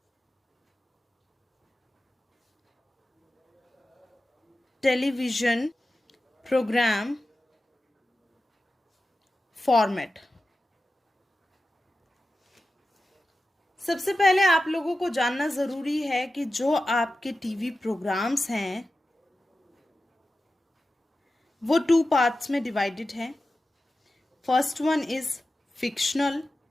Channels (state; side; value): normal; both; correlation 0.93